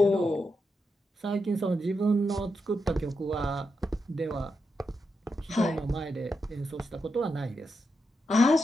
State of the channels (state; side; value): normal; both; correlation 0.85